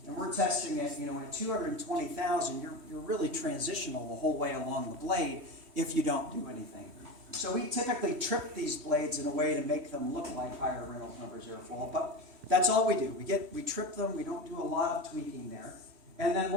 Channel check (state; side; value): late; left; 3.1 ms